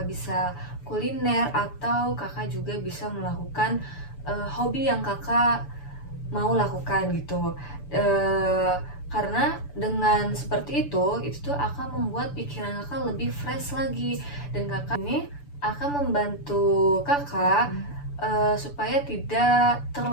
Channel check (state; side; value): late; right; 6.9 ms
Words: bisa kuliner, atau kakak juga bisa melakukan hobi yang kakak mau lakukan gitu. Karena dengan seperti itu tuh akan membuat pikiran kakak lebih fresh lagi, dan kakak ini akan membantu kakak supaya tidak